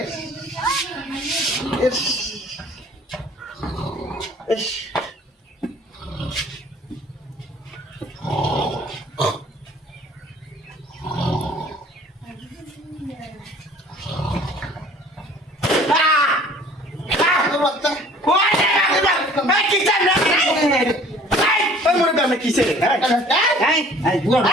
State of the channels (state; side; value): normal; both; correlation 0.51